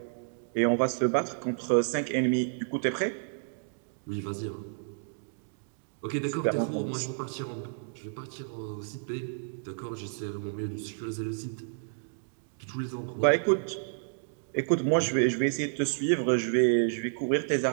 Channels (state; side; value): silent; left; digital silence